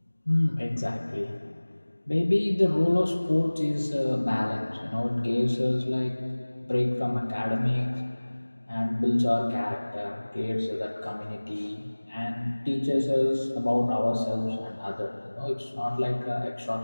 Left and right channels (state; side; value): inverted; both; correlation -1.00